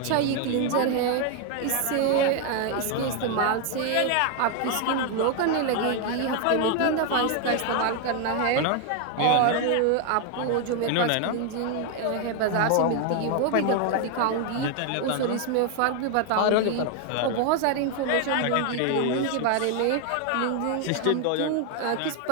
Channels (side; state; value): both; different; correlation 0.01